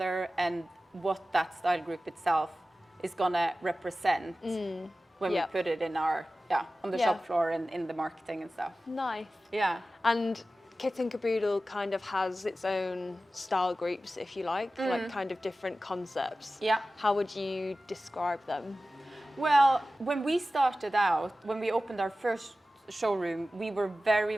and what that style group itself is gonna represent when we put it in our on the shop floor and in the marketing and stuff. Nice. Yeah. And Kit Kaboodle kind of has its own style groups, if you like kind of different concepts. How would you describe them? Well, when we started out, when we opened our first showroom, we were very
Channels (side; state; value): both; normal; correlation 0.95